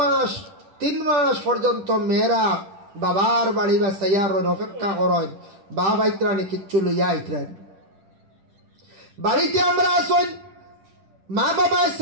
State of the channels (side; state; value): left; late; 10 ms